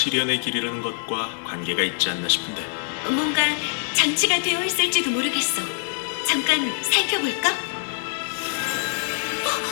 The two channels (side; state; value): right; silent; 56 dB below the other